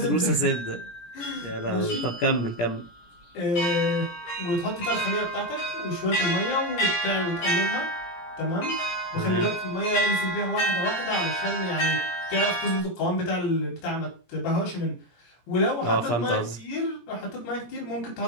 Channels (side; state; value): right; late; 17 ms